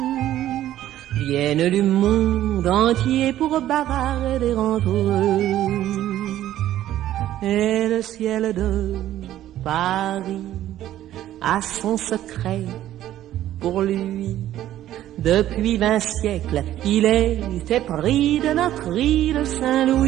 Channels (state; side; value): quieter; left; 12.9 dB